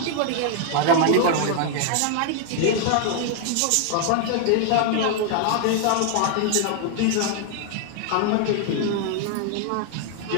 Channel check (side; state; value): both; different; correlation 0.00